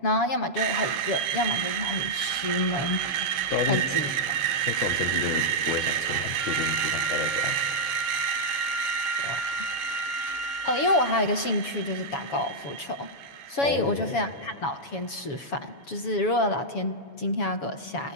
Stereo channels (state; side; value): late; right; 7.1 ms